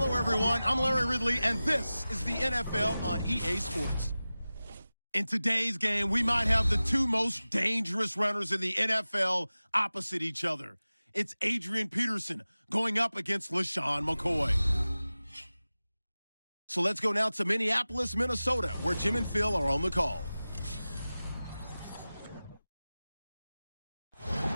everyone. I'm Larry Ridley, and this is the NFL on EA Sports. In today's game, we might have the two most dangerous runners in the NFL opposite each other. It's Adrian Peterson going up against LaShawn McCoy. So let's go now to Minneapolis, Minnesota, where Jim and Phil are on the call.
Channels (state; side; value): inverted; both; correlation -0.97